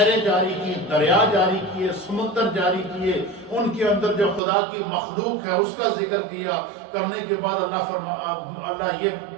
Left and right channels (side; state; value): left; drops out; at 4.4 s